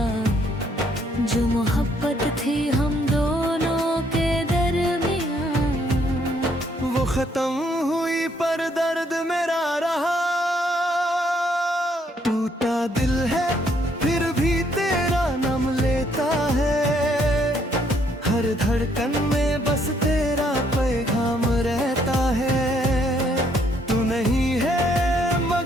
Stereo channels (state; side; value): normal; both; correlation 0.69